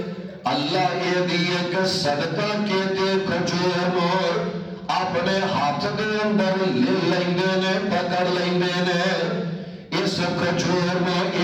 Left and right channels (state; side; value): identical; both; correlation 1.00